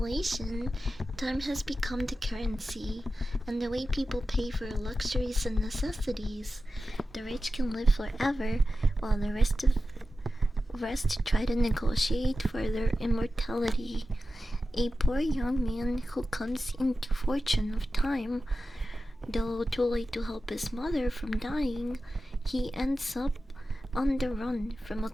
time has become the currency, and the way people pay for luxuries and necessities. The rich can live forever, while the rest try to negotiate for their immortality. A poor young man who comes into fortune of time, though too late to help his mother from dying, he ends up on the run from a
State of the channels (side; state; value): both; normal; correlation 0.93